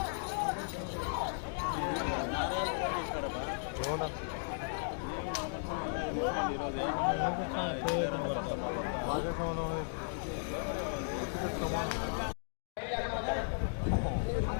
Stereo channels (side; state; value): right; silent; digital silence